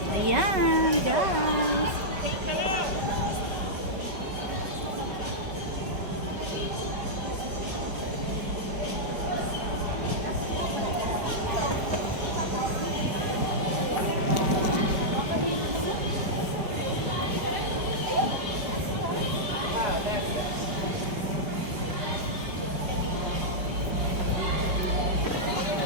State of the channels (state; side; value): late; left; 5.2 ms